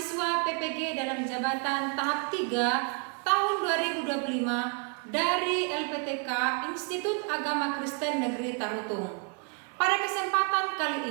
PPG dalam jabatan tahap 3 tahun 2025 dari LPTK Institut Agama Kristen Negeri Tarutung. Pada kesempatan kali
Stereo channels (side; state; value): left; quieter; 37.8 dB